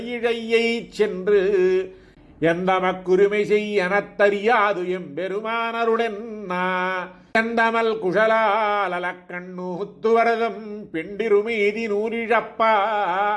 சென்று எந்தமக்குரிமை செய்யனத்தறியாது எம்பெருமானருடென்னா கந்தமல் குஷலாலக்கண்ணூத்துவரதம் பெண்டிருமீதி நூறிழப்பா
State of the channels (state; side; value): identical; both; correlation 1.00